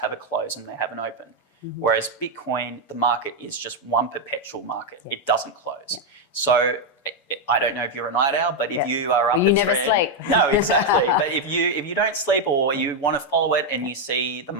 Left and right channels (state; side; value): normal; both; correlation 0.02